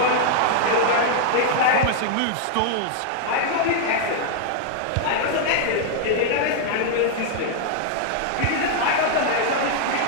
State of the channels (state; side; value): different; both; correlation -0.01